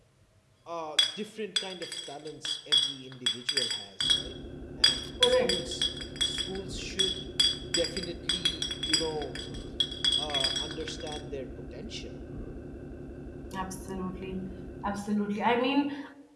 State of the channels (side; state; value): both; identical; correlation 1.00